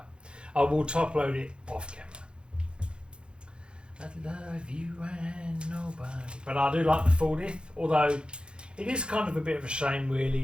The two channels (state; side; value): late; left; 0.054 ms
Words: I will top load it off camera. I love you and nobody. But I do like the 40th, although it is kind of a bit of a shame,